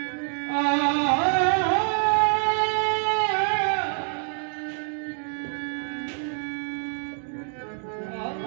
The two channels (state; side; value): silent; left; 59 dB below the other